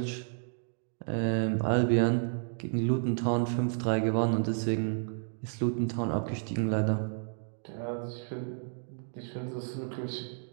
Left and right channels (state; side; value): silent; left; 57 dB below the other